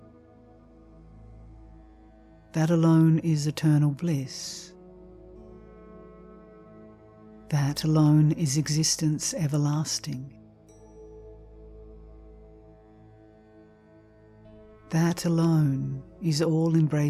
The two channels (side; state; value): both; identical; correlation 1.00